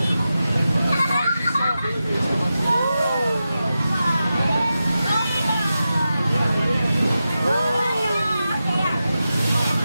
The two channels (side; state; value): both; inverted; correlation -0.91